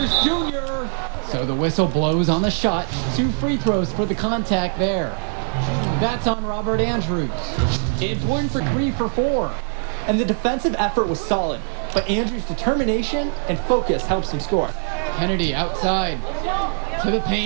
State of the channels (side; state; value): left; silent; digital silence